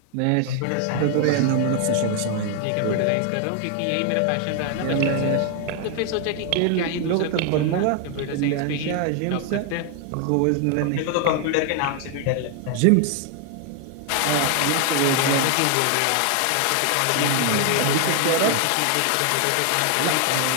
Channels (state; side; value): different; both; correlation 0.00